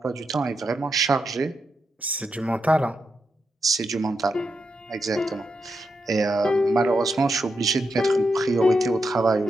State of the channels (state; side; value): normal; both; correlation 0.85